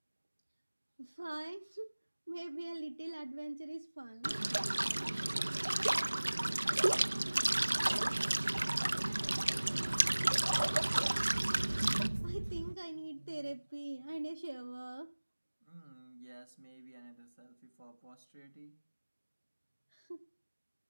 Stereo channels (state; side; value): inverted; both; correlation -1.00